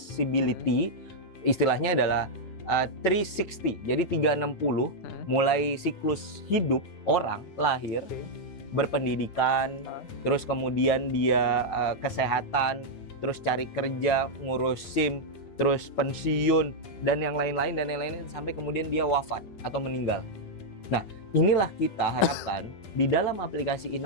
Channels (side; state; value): right; late; 9.3 ms